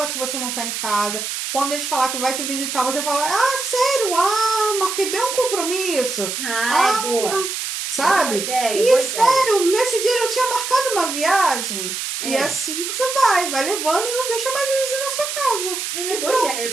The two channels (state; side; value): noise; right; hiss, 4 dB below the sound